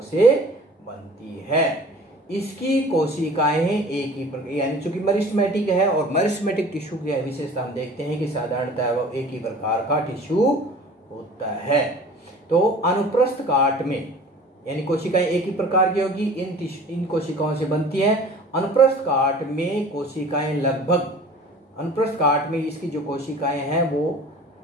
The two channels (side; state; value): both; normal; correlation 0.45